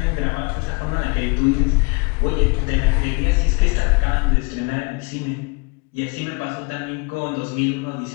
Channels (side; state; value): right; quieter; 29.1 dB